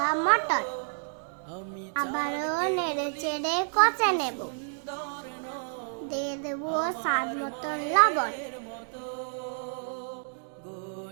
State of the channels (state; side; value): silent; left; digital silence